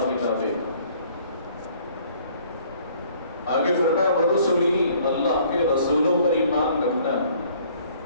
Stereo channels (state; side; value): inverted; both; correlation -0.58